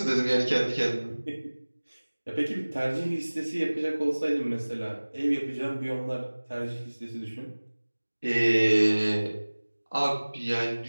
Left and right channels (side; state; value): both; inverted; correlation -1.00